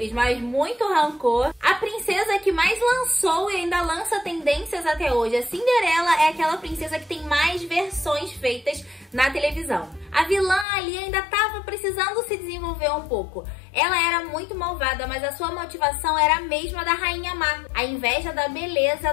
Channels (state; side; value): drops out; right; at 10.7 s